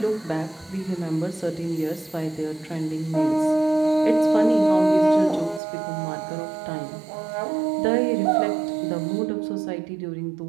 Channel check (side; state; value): left; drops out; at 5.6 s